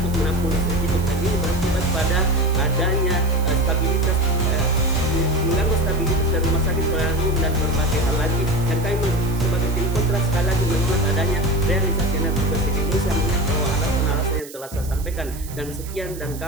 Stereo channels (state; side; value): noise; right; hiss, 16 dB below the sound